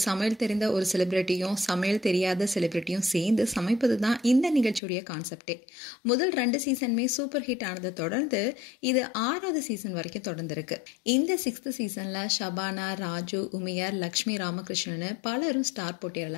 சமையல் தெரிந்த ஒரு செலிப்ரிட்டியும் சமையல் தெரியாத செலிப்ரிட்டியும் சேர்ந்து சமைப்பது தான் இந்த நிகழ்ச்சியோடைய கான்செப்டே. முதல் 2 சீசனுமே சூப்பர் ஹிட் ஆனதை தொடர்ந்து இது 6வது சீசன் வரைக்கும் தொடர்ந்துருக்கு. இந்த 6th சீசனில் ஷபானா, ராஜு, உமையார், லக்ஷ்மி ராமகிருஷ்ணன் பலரும் ஸ்டார்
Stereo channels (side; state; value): right; drops out; at 4.8 s